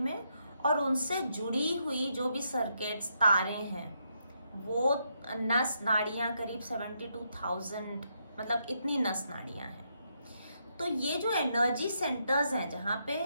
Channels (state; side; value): inverted; both; correlation -0.79